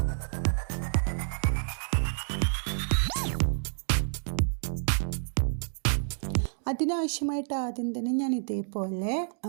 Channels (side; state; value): left; silent; 58 dB below the other